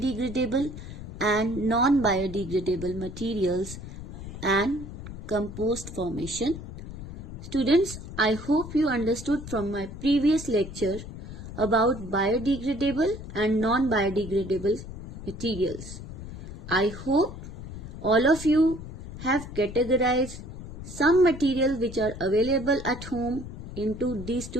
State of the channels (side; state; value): left; noise; rumble, 11 dB below the sound